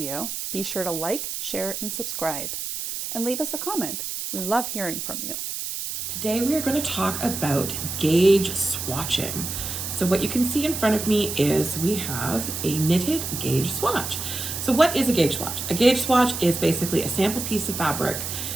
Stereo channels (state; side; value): noise; right; hiss, 5 dB below the sound